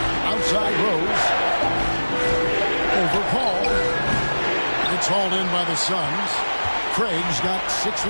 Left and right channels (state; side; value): inverted; both; correlation -1.00